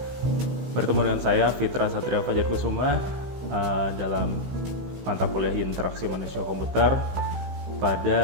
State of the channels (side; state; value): left; late; 16 ms